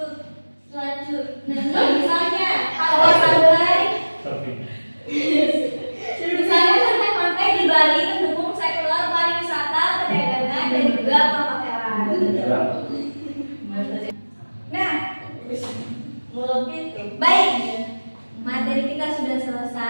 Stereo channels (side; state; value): both; inverted; correlation -1.00